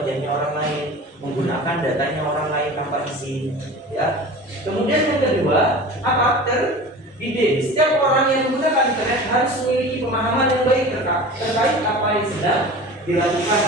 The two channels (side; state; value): both; normal; correlation 0.36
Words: orang lain, menggunakan datanya orang lain tanpa izin. Ya. Kemudian yang kedua, apa? Terdidik. Setiap orang yang menggunakan internet harus memiliki pemahaman yang baik terkait apa yang sedang